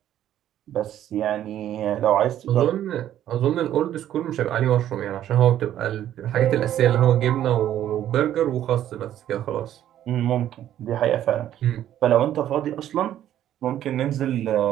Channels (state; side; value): quieter; left; 11.6 dB